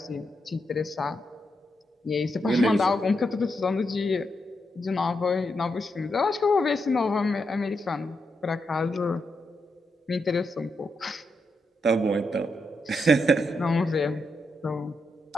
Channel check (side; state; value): both; normal; correlation 0.83